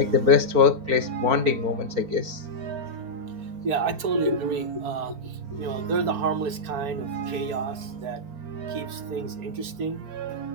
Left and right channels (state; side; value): late; left; 4.4 ms